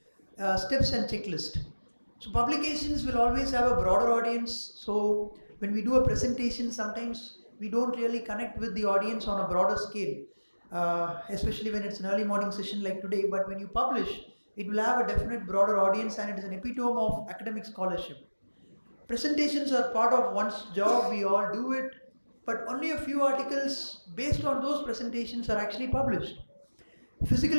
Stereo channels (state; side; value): inverted; both; correlation -1.00